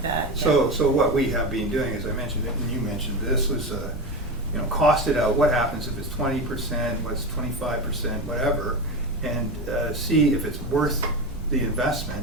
that. So what we have been doing, as I mentioned, and you mentioned, this was, cost it out. What happens if it's 20%, what's 25%, whatever, and see if it's worth the investment,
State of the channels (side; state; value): both; normal; correlation 0.21